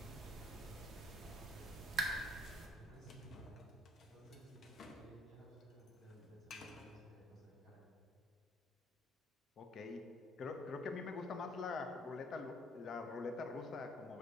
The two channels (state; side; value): normal; both; correlation 0.62